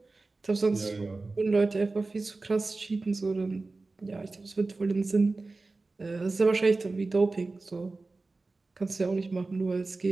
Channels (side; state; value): left; quieter; 3.5 dB